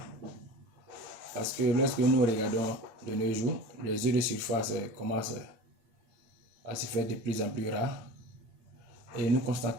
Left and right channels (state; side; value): late; left; 8.9 ms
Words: Parce que lorsque nous regardons de nos jours, les eaux de surface commencent à se faire de plus en plus rares. Et nous